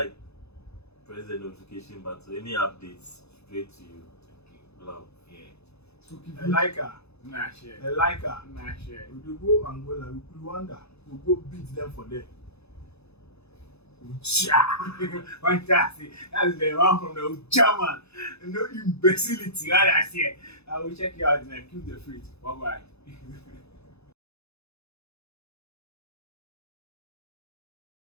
press the notification button. Any updates straight to you. Love. Yeah. Spooky I like her. Nah, share. I like her. Nah, share. We go Angola, Rwanda. We go beat them for them. Fantastic. That's the one from the German. No imbecility. Right, I see. I will check you out and keep the faith. Bye bye.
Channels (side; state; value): right; late; 0.79 ms